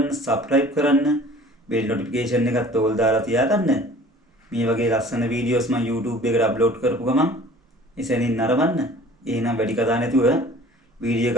සබ්ස්ක්‍රයිබ් කරන්න, බෙල් නොටිෆිකේෂන් එකත් ඕල් දාලා තියාගන්න. මේ වගේ ලස්සන වීඩියෝස් මම YouTube එකට අප්ලෝඩ් කරපු ගමන් එසැනින් නරඹන්න. එහෙනම් වැඩි කතා නැතුව වීඩියෝ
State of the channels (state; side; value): normal; both; correlation 0.48